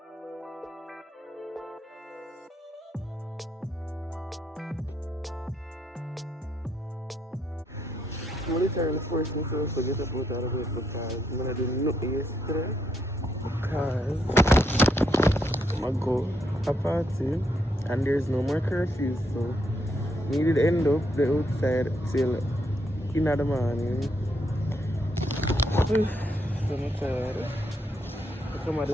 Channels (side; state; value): both; normal; correlation 0.76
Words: I'm literally forcing myself to get up out of the bed because I'm gonna do nothing yesterday because I'm gonna go a party and there's no more curfew, so we did end up the outside till in the morning. So I'm tired. I come at